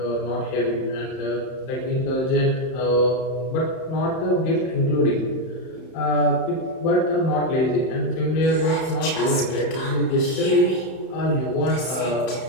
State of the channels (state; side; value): late; right; 31 ms